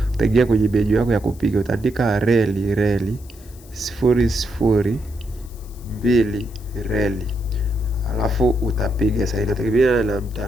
Utaingia kwenye menu yako ya kupiga, utaandika reli 002 reli. Alafu utapiga. Sasa inategemea na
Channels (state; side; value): noise; left; hiss, 24 dB below the sound